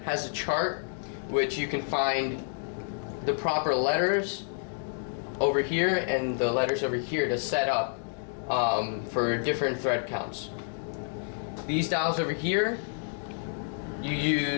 has a chart which you can find the proper letters over here and the letters over here to set up for different thread counts. These dials over here, you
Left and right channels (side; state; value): right; silent; digital silence